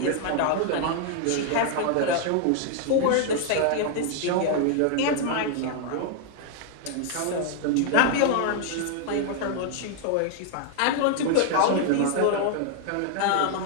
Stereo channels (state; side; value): different; both; correlation 0.00